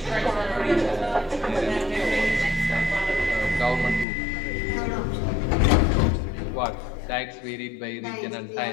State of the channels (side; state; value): right; drops out; at 4.0 s